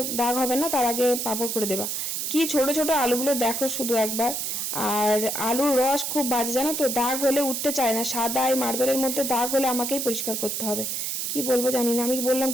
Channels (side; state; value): right; noise; hiss, 2 dB below the sound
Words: দাগ হবে না, তার আগে পাঁপড় করে দেবা। কি ছোট ছোট আলুগুলো দেখো শুধু একবার। আর আলুর রস খুব বাজে, জানো তো, দাগ হলে উঠতে চায় না, সাদা এই মার্বেলের মধ্যে দাগ হলে আমাকেই পরিষ্কার করতে হবে। কি বলবো জানি না, আমি বললাম